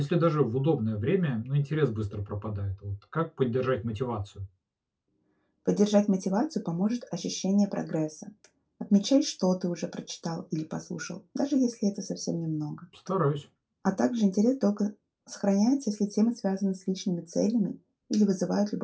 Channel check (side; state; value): both; identical; correlation 1.00